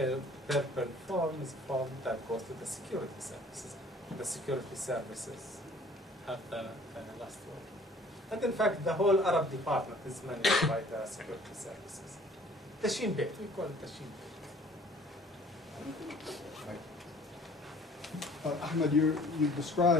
purple form is a form that goes to the security services. The security services have the last word. And in fact, the whole Arab department is managed by the security services. The Shin Bet, we call it the Shin Bet. Ahmad, you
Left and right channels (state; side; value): normal; both; correlation 0.53